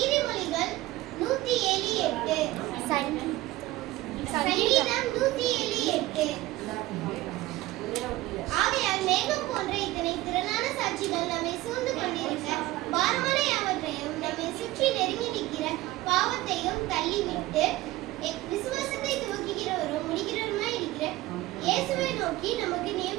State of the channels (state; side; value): quieter; left; 17.6 dB